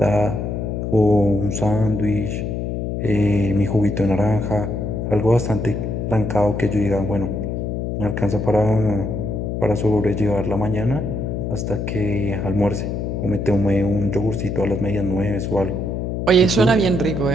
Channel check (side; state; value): left; noise; hum, 2 dB below the sound